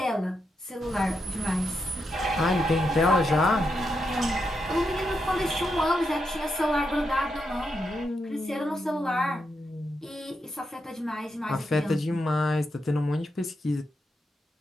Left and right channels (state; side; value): normal; both; correlation 0.84